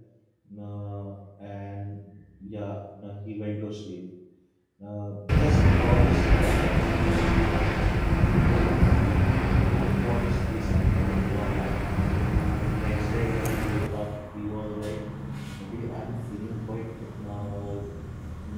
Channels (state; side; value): identical; both; correlation 1.00